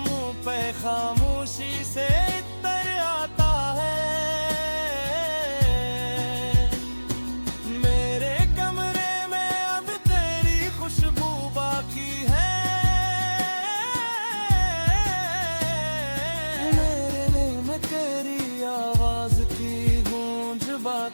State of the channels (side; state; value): both; inverted; correlation -1.00